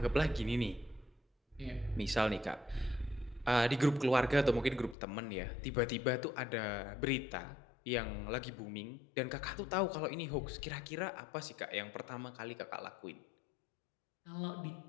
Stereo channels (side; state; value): right; drops out; at 5.0 s